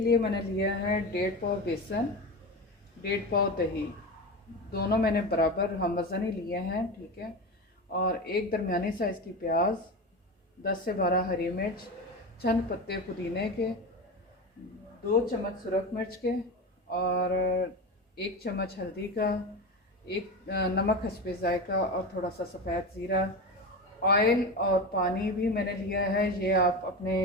लिए मैंने लिया है 1.5 पाव बेसन, 1.5 पाव दही। दोनों मैंने बराबर हम वज़न ही लिए हैं, ठीक है। और एक दरमियानी साइज़ की प्याज, 10 से 12 हरी मिर्च, चंद पत्ते पुदीने के, 2 चम्मच सुरख मिर्च के, और 1 चम्मच हल्दी का, एक नमक हस्बे ज़ायका, और थोड़ा सा सफ़ेद ज़ीरा। ऑयल और पानी भी मैंने लिया है, ये आप अपने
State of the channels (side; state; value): both; normal; correlation 0.23